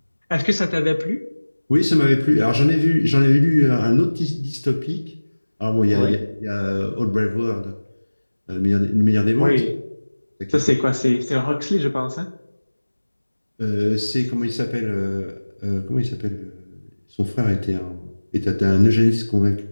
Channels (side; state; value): both; inverted; correlation -1.00